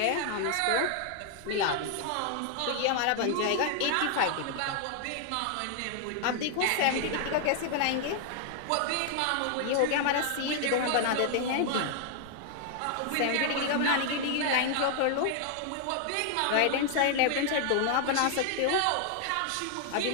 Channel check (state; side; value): different; both; correlation 0.00